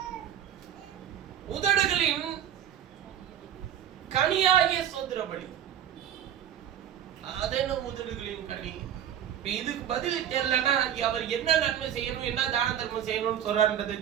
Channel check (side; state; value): left; quieter; 9.9 dB